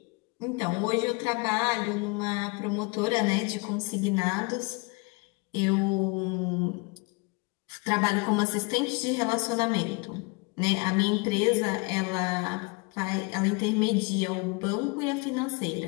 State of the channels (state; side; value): quieter; right; 28.9 dB